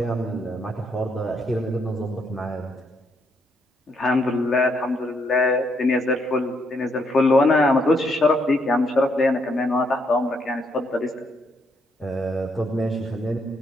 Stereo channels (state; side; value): normal; both; correlation 0.74